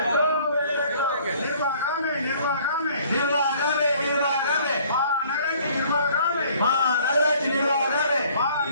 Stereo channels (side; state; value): both; inverted; correlation -0.56